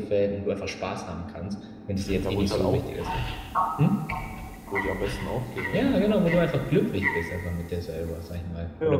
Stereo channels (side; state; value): both; identical; correlation 1.00